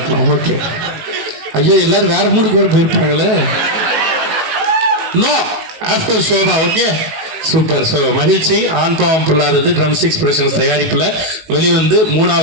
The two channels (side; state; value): left; late; 19 ms